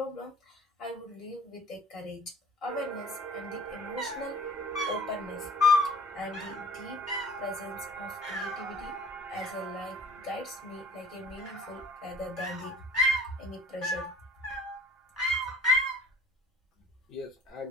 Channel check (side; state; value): both; normal; correlation 0.49